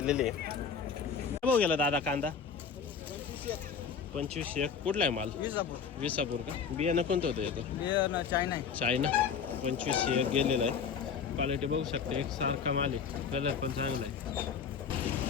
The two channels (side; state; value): right; quieter; 6.6 dB